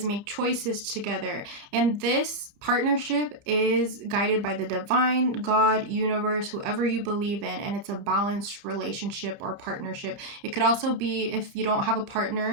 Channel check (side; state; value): left; late; 30 ms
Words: make choices together. And this partnership is guided by the divine, God, universe, whoever you believe in, and it's a balanced relationship or partnership. It could also be, if you don't have a